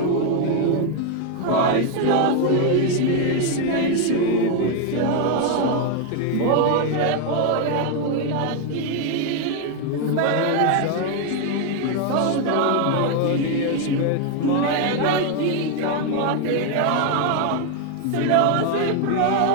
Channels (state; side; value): different; both; correlation 0.01